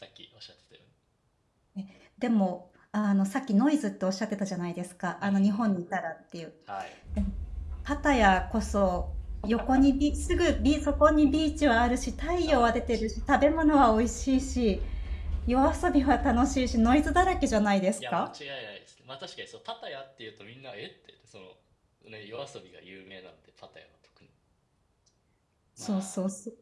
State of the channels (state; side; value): identical; both; correlation 1.00